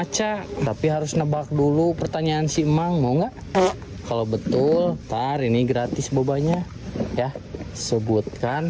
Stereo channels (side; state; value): both; identical; correlation 1.00